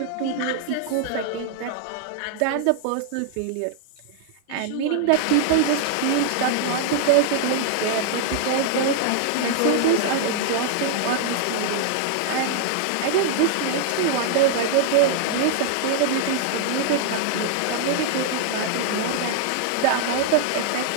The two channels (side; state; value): both; different; correlation -0.01